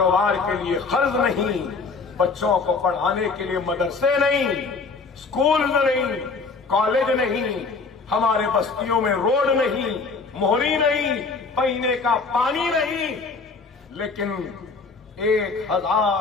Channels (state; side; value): quieter; right; 4.4 dB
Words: के लिए कर्ज नहीं, बच्चों को पढ़ाने के लिए मदरसे नहीं, स्कूल नहीं, कॉलेज नहीं, हमारे बस्तियों में रोड नहीं, मोहरी नहीं, पीने का पानी नहीं, लेकिन